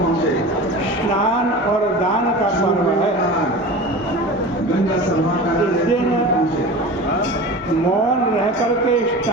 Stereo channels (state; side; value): normal; both; correlation 0.34